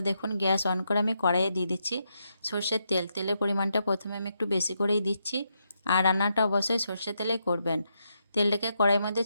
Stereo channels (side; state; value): both; inverted; correlation -0.81